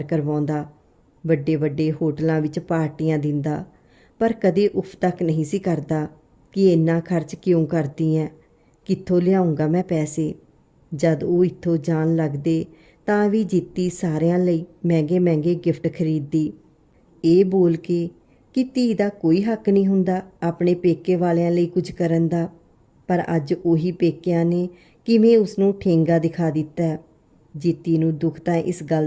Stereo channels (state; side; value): identical; both; correlation 1.00